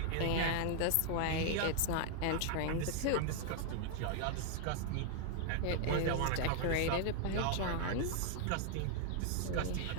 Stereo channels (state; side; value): different; both; correlation 0.00